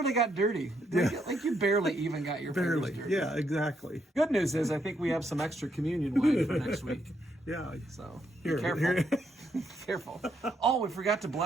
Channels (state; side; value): normal; both; correlation 0.76